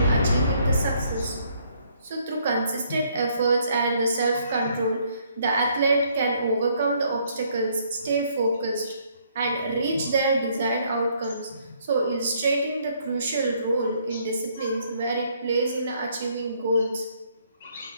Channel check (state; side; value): inverted; both; correlation -0.67